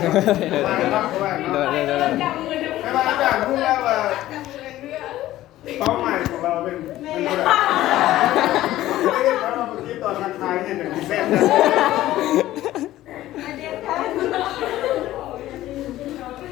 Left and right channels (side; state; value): right; quieter; 14.8 dB